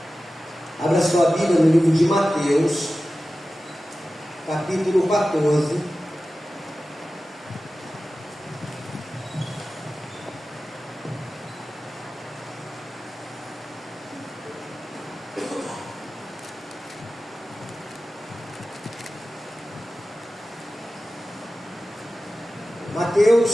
Abra sua Bíblia no livro de Mateus, capítulo 14.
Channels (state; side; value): normal; both; correlation 0.95